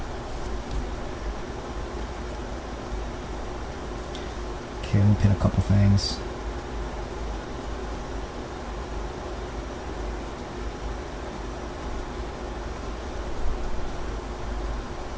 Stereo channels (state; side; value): identical; both; correlation 1.00